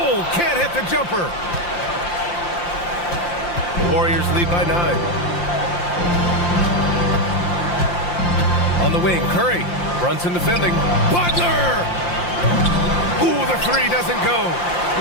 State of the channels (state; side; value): late; right; 5.7 ms